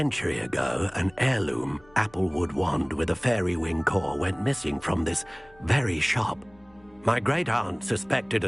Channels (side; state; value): left; noise; rumble, 29 dB below the sound